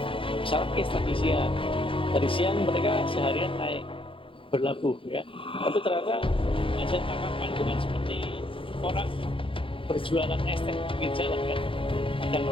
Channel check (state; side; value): late; right; 0.25 ms